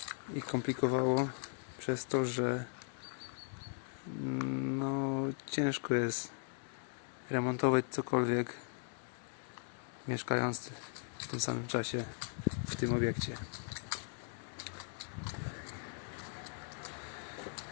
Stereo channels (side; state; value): right; silent; 52 dB below the other